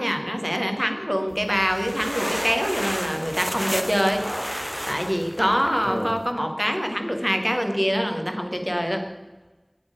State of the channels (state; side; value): identical; both; correlation 1.00